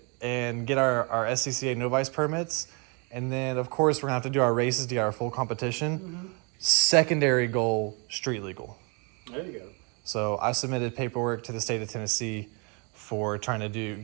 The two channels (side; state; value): left; quieter; 32.5 dB